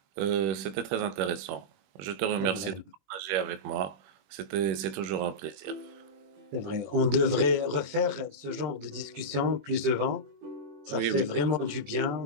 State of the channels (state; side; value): late; left; 21 ms